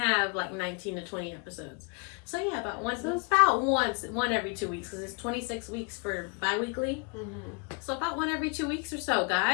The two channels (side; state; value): right; quieter; 32.8 dB